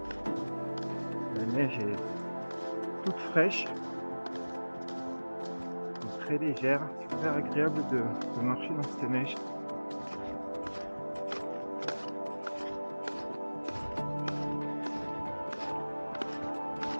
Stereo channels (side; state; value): both; inverted; correlation -1.00